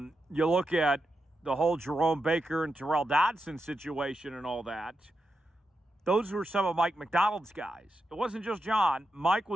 look at the whole Jerome Baker and Terrell Dodson situation and all that. Those were some of Mike Macdonald's guys. It wasn't just John. Mike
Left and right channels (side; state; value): both; normal; correlation 0.87